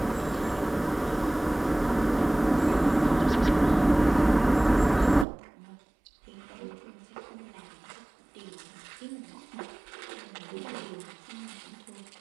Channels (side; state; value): left; drops out; at 5.2 s